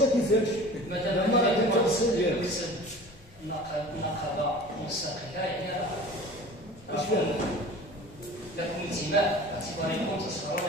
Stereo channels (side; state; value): both; normal; correlation 0.41